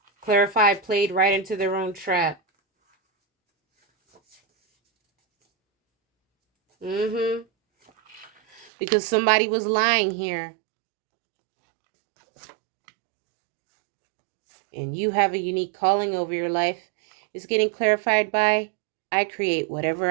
Clarified played right into their own trap. Because somebody was lying here. And you have a unique calling over your life. It's getting clarified by, I create whatever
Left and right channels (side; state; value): left; drops out; at 8.7 s